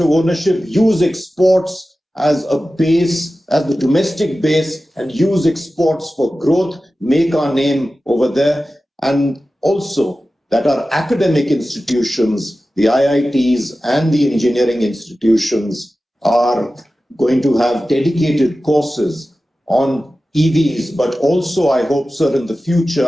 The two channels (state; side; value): normal; both; correlation 0.95